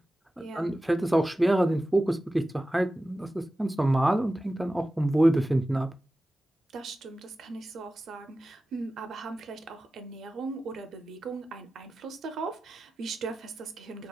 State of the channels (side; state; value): both; normal; correlation 0.95